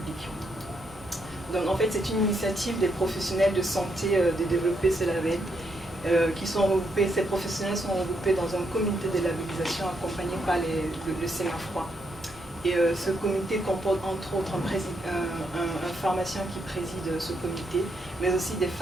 Donc en fait, c'est une initiative des professionnels de santé de développer ce label, ces professionnels sont regroupés dans un comité de labellisation accompagné par le CMAFROI. Et ce comité comporte entre autres un pharmacien qui préside ce comité, mais aussi des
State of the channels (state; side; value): normal; both; correlation 0.78